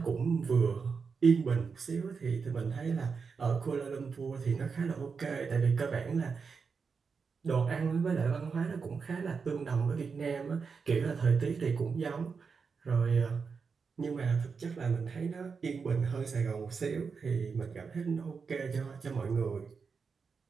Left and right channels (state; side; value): quieter; left; 5.4 dB